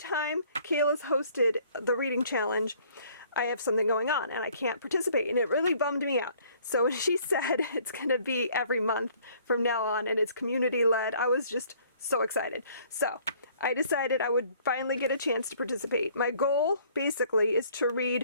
Kayla's hosted the reading challenge, I have something going on and I can't participate, and it really bummed me out. So when she said it's going to be every month from now on and it's community led, I was just so excited. So I decided I would finally get a chance to participate. My goal basically is to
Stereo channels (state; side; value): inverted; both; correlation -0.58